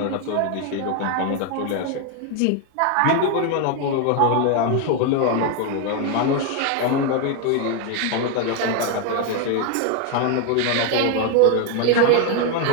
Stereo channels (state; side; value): different; both; correlation 0.01